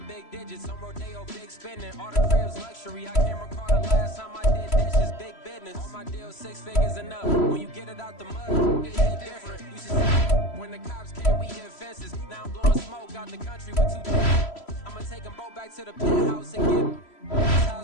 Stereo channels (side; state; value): right; late; 3.0 ms